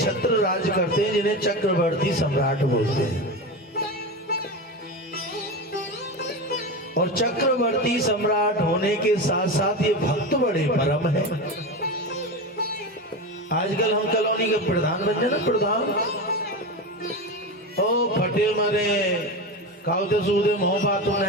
राज करते हैं जिन्हें चक्रवर्ती सम्राट बोलते हैं। और चक्रवर्ती सम्राट होने के साथ साथ ये भक्त बड़े परम है। आजकल हम कॉलोनी के प्रधान बन जाए ना, प्रधान ओ फटे मरे कावते सूदे मोह बातों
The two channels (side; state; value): both; normal; correlation 0.22